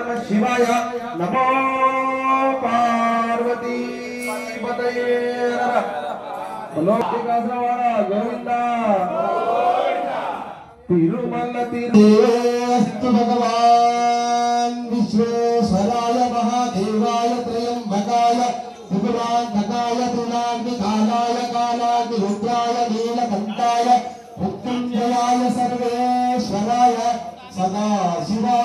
नमो पार्वती पतये गोविंदा तिरुमल तिरुस्तु भगवान विश्वेश्वराय महादेवाय त्रयंबकाय त्रिपुरांतकाय त्रिनाग्निकालाय कालाग्निरुद्राय नीलकंठाय मृत्युंजयाय सर्वेश्वराय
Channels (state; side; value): identical; both; correlation 1.00